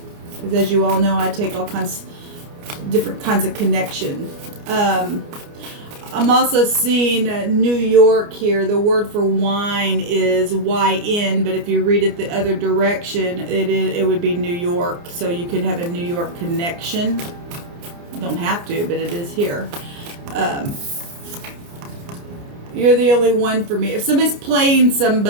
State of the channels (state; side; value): late; left; 29 ms